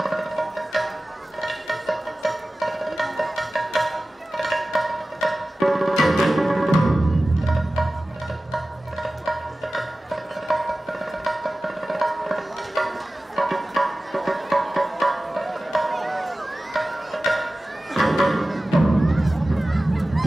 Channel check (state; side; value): normal; both; correlation 0.96